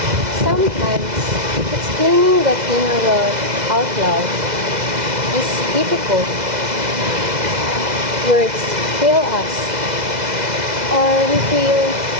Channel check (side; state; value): left; late; 2.0 ms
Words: Sometimes, explaining that inner world out loud is difficult. Words fail us, or we feel